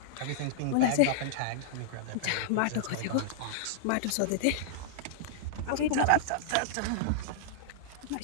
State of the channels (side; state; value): both; different; correlation -0.02